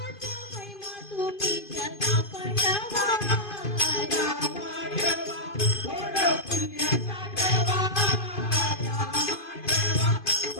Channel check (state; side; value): late; right; 2.5 ms